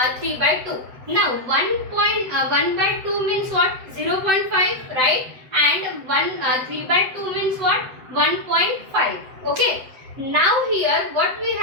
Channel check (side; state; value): left; late; 7.9 ms